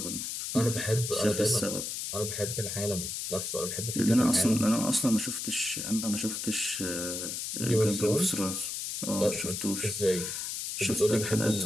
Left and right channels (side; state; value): left; noise; hiss, 4 dB below the sound